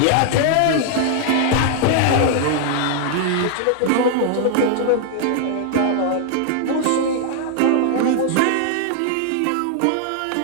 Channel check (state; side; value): different; both; correlation 0.00